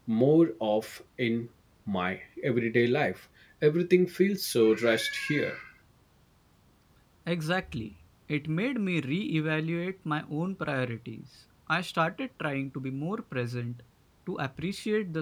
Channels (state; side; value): identical; both; correlation 1.00